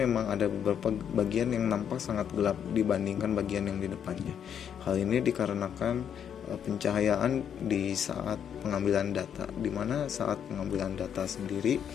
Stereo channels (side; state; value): right; quieter; 8.6 dB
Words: ada beberapa bagian yang nampak sangat gelap dibandingkan bagian yang di depannya. Hal ini dikarenakan pencahayaan di saat pengambilan data, di mana saat pengambilan data sendiri